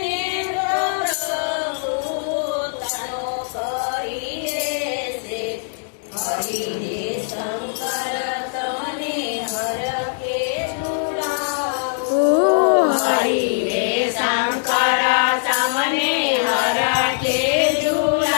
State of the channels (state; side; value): silent; right; 65 dB below the other